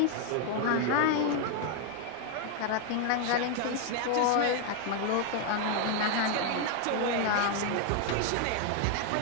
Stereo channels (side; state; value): both; different; correlation 0.01